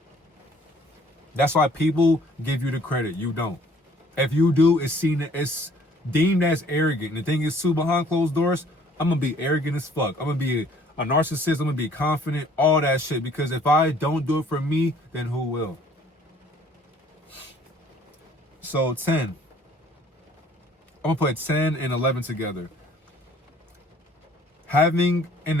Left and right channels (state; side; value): normal; both; correlation 0.57